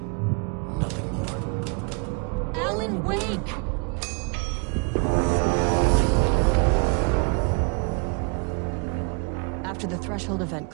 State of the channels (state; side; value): quieter; left; 33.7 dB